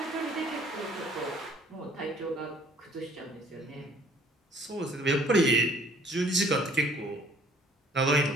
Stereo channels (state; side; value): normal; both; correlation 0.57